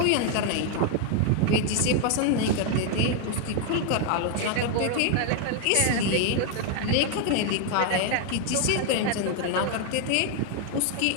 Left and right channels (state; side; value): different; both; correlation 0.00